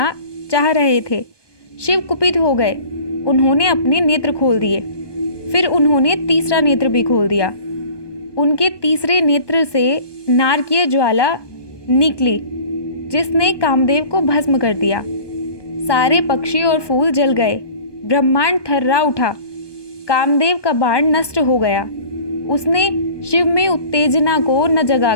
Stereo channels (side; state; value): right; late; 1.2 ms